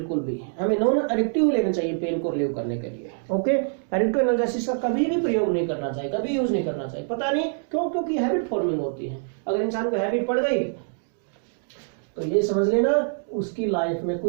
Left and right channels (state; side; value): silent; left; digital silence